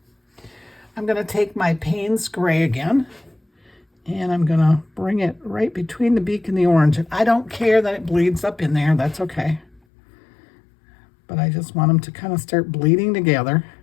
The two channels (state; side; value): drops out; right; at 9.8 s